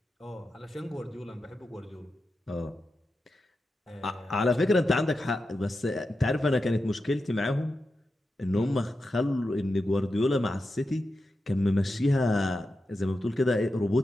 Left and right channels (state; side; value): normal; both; correlation 0.90